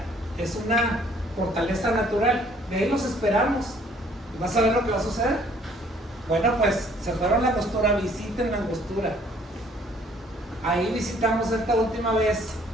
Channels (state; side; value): normal; both; correlation 0.60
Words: Es una fortaleza natural. De ahí los esperamos. ¿Vas a ver lo que va a suceder? Bueno, pues se fueron a la Angostura, visiten la Angostura. Ahí visitamos esta última vez